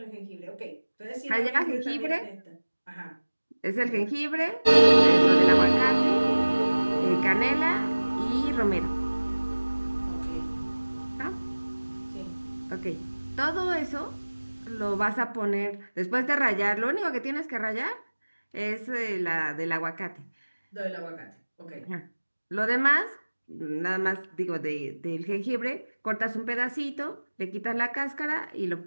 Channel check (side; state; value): both; inverted; correlation -1.00